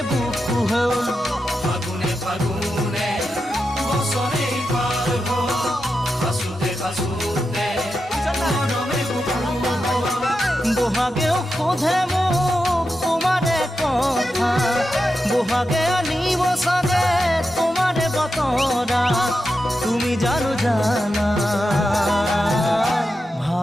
বুকু হ'ল ফাগুনে ফাগুনে বছৰে পাৰ হ'ল খাচোতে খাচোতে মৰমে বুকু হ'ল বহাগেও সোধে মোক তোমাৰে কথা বহাগে আনিব চাগে তোমাৰে বতৰা তুমি জানো জানা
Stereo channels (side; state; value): both; normal; correlation 0.89